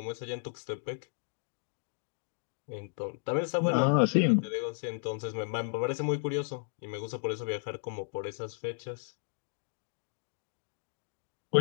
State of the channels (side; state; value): right; silent; digital silence